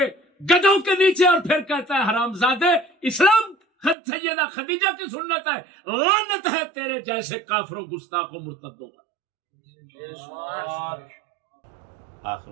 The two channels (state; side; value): drops out; left; at 4.0 s